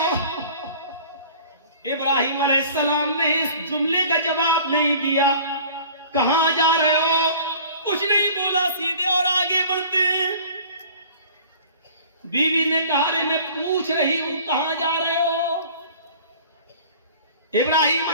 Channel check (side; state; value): both; inverted; correlation -0.46